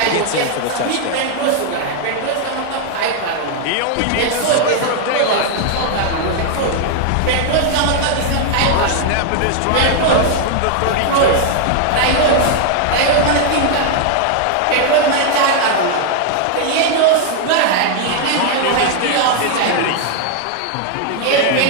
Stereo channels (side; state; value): both; different; correlation 0.00